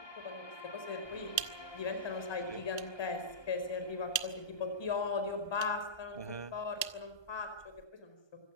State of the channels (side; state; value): right; late; 1.2 ms